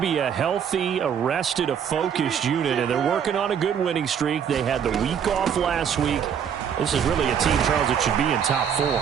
be a healthy, a focused unit, and they're working on a good winning streak. They had the week off last week. This is really a team, Charles, that should be in top 4.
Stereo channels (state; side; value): quieter; left; 8.0 dB